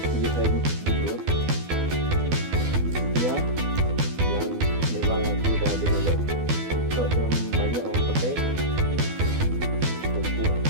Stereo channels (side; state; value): left; late; 12 ms